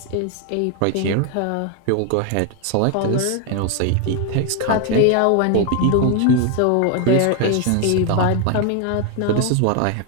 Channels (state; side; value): different; both; correlation 0.01